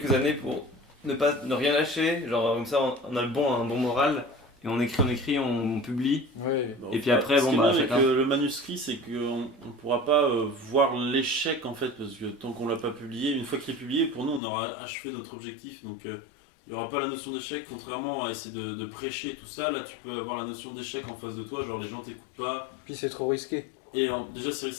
années pour ne rien lâcher, genre comme ça on a un bon moral, et on écrit, on publie. Ouais. Et puis après, ce bon, qui est bah, bien avec chacun. le manuscrit, c'est qu'on ne pourra pas voir l'échec en fait, parce que tant qu'on l'a pas publié, une fois qu'il est publié, pour nous on aura achevé notre objectif. Donc il n'y aura pas la notion d'échec, contrairement à essayer de prêcher tout ça. Là tu peux avoir la notion d'échec en face de toi, genre les gens t'écoutent pas. Puis c'est trop risqué. Et déjà c'est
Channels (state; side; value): drops out; right; at 14.4 s